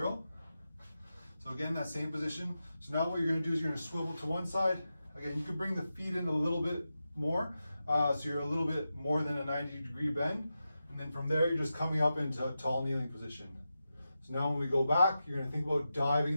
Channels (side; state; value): both; inverted; correlation -0.90